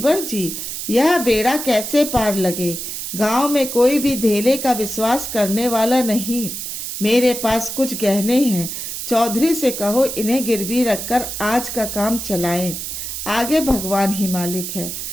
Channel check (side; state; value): right; noise; hiss, 6 dB below the sound